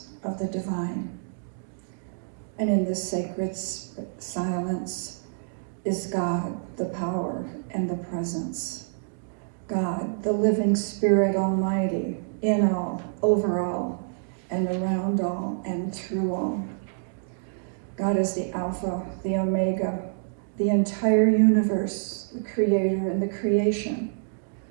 of the divine. And in this sacred silence is God, the power and the presence. God, the living Spirit Almighty, in all, over all, and around all, and through all. God is the Alpha, the Omega, the entire universe, the Creator and the creation,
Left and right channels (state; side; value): silent; left; digital silence